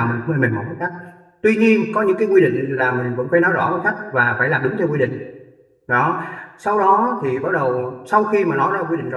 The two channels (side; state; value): both; identical; correlation 1.00